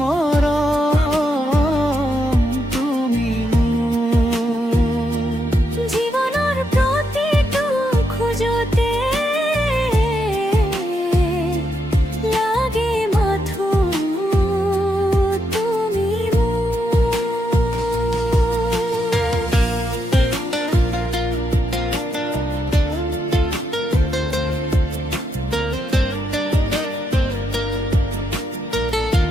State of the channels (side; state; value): both; normal; correlation 0.80